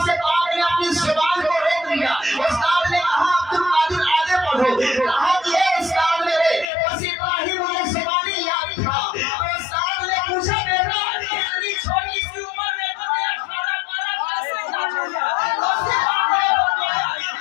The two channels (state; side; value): drops out; right; at 6.7 s